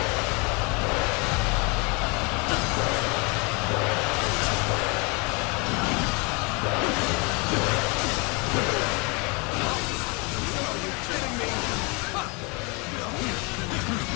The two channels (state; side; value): quieter; right; 30.6 dB